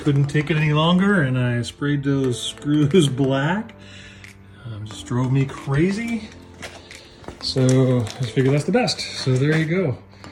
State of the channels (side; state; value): both; identical; correlation 1.00